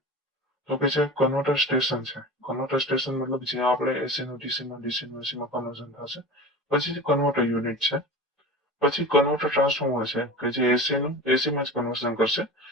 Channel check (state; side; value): normal; both; correlation 0.33